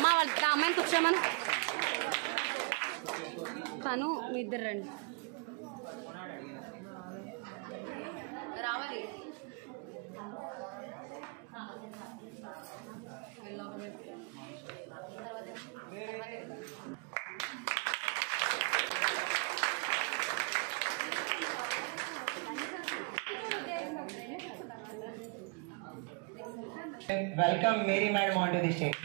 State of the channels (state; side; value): quieter; left; 32.9 dB